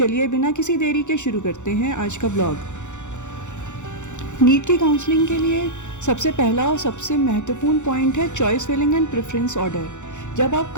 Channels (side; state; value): right; late; 0.84 ms